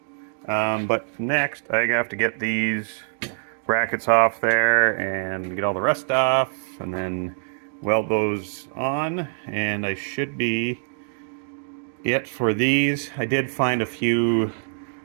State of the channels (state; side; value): silent; left; digital silence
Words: But next, I have to get these brackets off there and get all the rust off, and then weld those on, and I should be it for these. I did find a few